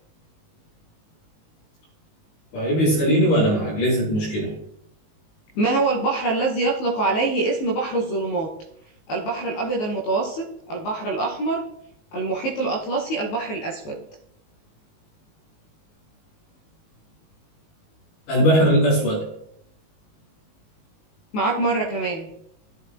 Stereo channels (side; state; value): right; late; 19 ms